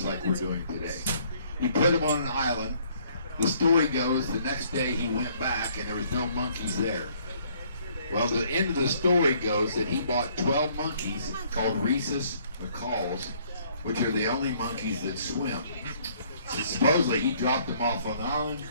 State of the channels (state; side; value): inverted; both; correlation -0.63